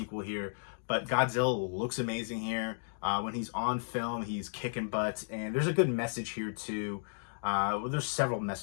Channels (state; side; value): silent; right; digital silence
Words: here, but Godzilla looks amazing here. When he's on film, he's kicking butt, and there's a good message here too. Well, there's several